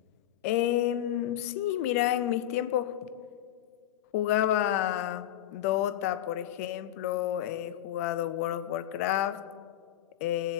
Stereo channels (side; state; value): right; quieter; 12.1 dB